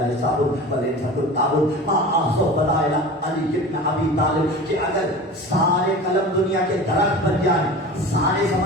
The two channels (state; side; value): normal; both; correlation 0.35